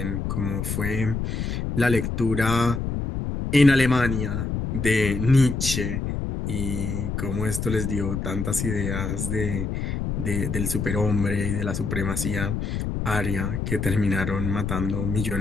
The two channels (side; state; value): left; noise; rumble, 2 dB below the sound